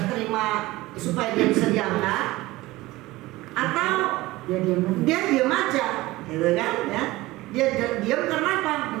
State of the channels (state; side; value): quieter; left; 19.0 dB